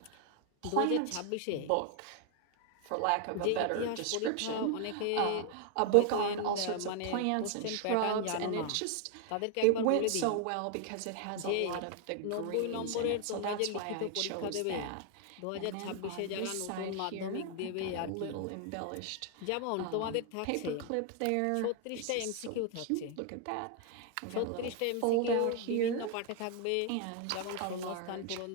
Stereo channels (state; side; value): different; both; correlation 0.00